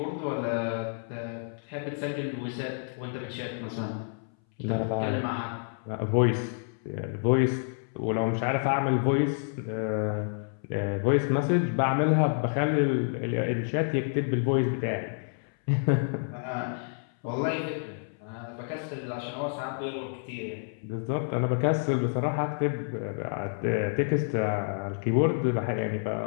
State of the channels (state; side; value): silent; right; 59 dB below the other